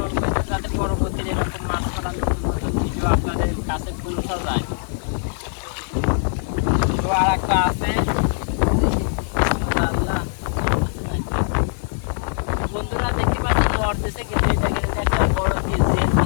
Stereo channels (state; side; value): silent; right; digital silence